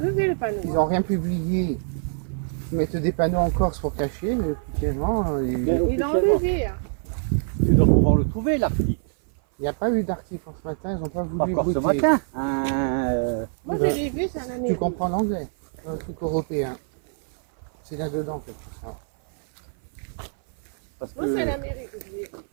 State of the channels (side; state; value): left; silent; 56 dB below the other